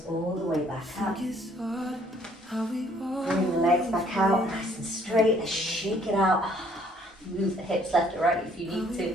all the way back up. Bring the legs back out, nice and straight. Shake it out. Move the hips left or right if you need to,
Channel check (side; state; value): both; normal; correlation 0.62